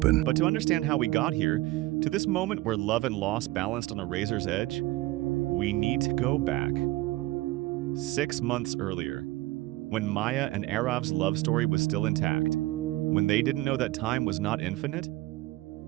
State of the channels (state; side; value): quieter; left; 18.4 dB